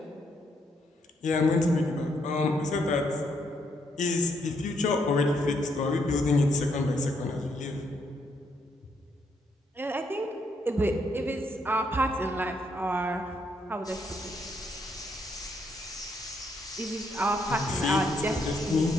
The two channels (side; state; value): both; normal; correlation 0.74